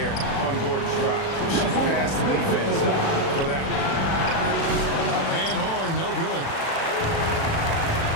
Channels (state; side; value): late; right; 36 ms